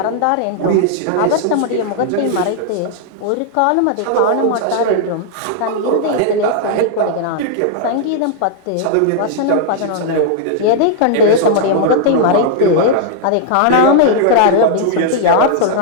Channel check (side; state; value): both; different; correlation -0.01